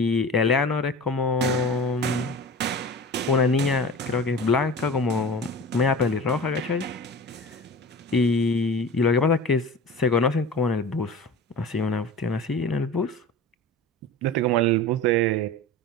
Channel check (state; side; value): normal; both; correlation 0.35